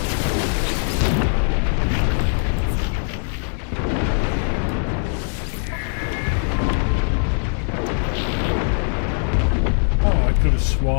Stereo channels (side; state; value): right; silent; 65 dB below the other